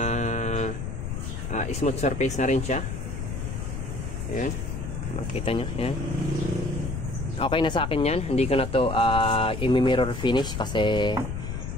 smooth surface na rin siya. Ayan. Makita nyo. Yan. Okay na sa akin yan. Hindi ko na to i-mirror finish kasi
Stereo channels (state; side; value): noise; left; rumble, 5 dB below the sound